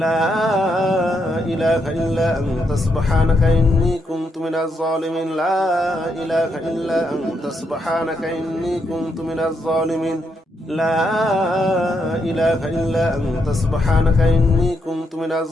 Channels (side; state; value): both; normal; correlation 0.79